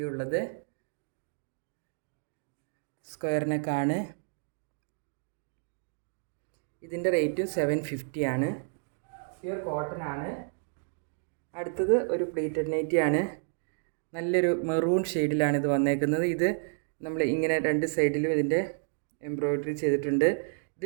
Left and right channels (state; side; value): silent; left; digital silence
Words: ഉള്ളത്. സ്ക്വയർ നെക്കാണ്. ഇതിൻ്റെ റേറ്റും 750 ആണ്. പ്യുർ കോട്ടൺ ആണ്. അടുത്തത് ഒരു പ്ലീറ്റഡ് നൈറ്റിയാണ്. നല്ലൊരു മെറൂൺ ഷെയ്ഡിലാണ് ഇത് വന്നേക്കുന്നത്. ഇത് നമ്മൾ ഇങ്ങനെ 2 സൈഡിലും ഇതിൻ്റെ എംബ്രോയിഡറി ചെയ്തിട്ടുണ്ട്.